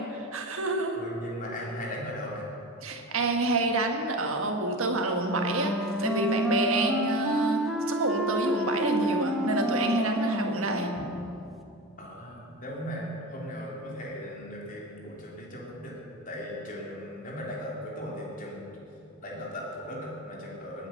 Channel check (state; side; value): normal; both; correlation 0.27